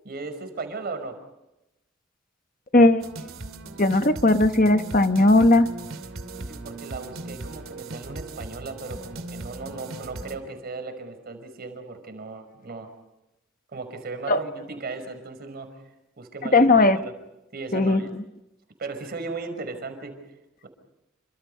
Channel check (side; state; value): both; normal; correlation 0.45